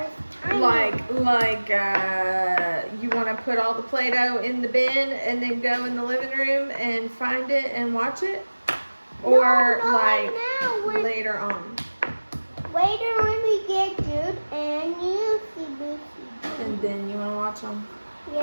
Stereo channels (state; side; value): inverted; both; correlation -1.00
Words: time. You want to put all the Play-Doh in the bin and then go in the living room and find it and watch it? Or No, like right now. later on? Later when we get Jude and you see Lucy. And then you want to watch them?